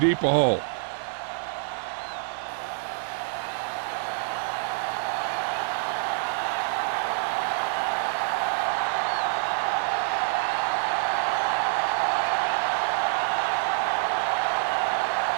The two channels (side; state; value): left; silent; digital silence